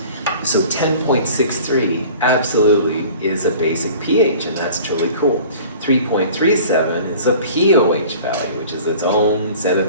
So 10.63 absolutely is a basic pH, and that's truly cool. 3.37 is a POH value, which is its own set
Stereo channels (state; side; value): inverted; both; correlation -0.45